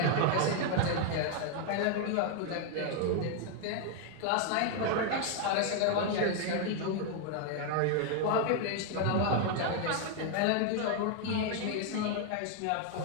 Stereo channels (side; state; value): both; different; correlation 0.00